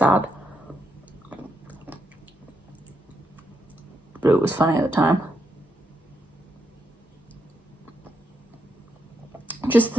but it was funny at the time. Just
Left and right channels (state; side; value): normal; both; correlation 0.81